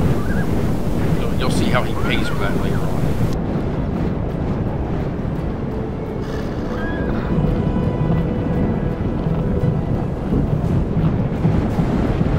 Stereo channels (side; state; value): both; identical; correlation 1.00